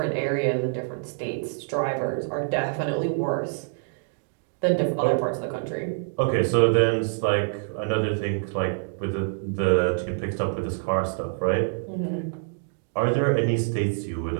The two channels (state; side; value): silent; left; digital silence